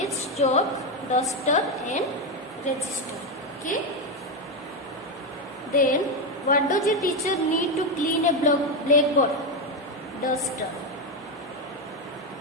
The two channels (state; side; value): normal; both; correlation 0.09